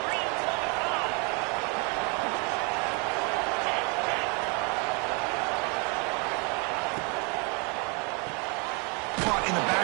Caught in the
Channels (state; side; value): quieter; left; 32.3 dB